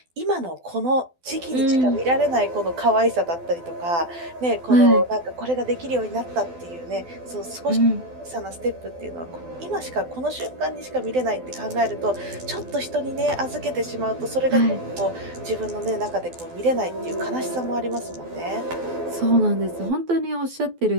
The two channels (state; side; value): late; left; 12 ms